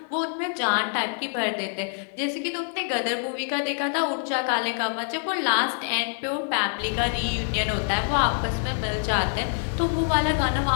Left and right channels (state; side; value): silent; right; 61 dB below the other